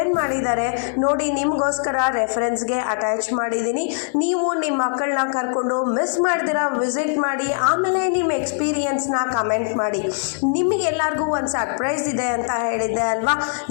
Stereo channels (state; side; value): silent; right; 57 dB below the other